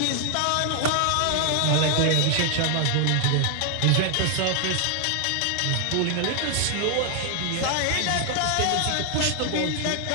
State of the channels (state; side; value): different; both; correlation 0.00